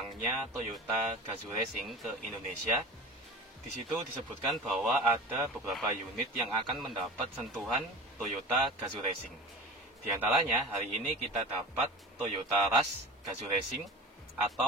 Toyota Gazoo Racing ke Indonesia, di situ disebutkan bahwa ada beberapa unit yang akan mendapat sentuhan Toyota Gazoo Racing. Di antaranya, hari ini kita dapat Toyota Rush Gazoo Racing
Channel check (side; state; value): both; normal; correlation 0.36